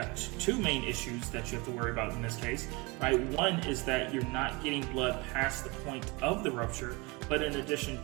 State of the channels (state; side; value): quieter; left; 26.2 dB